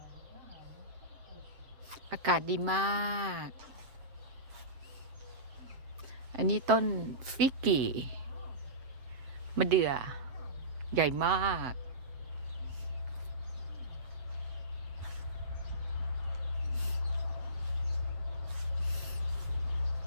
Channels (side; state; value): left; late; 7.8 ms